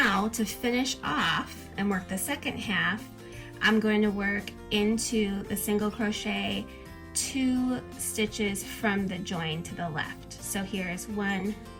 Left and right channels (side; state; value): both; identical; correlation 1.00